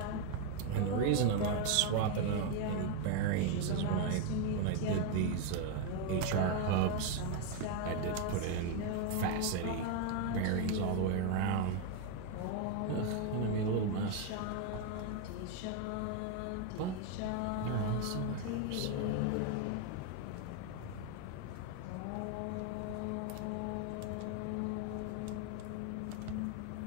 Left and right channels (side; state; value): both; different; correlation 0.01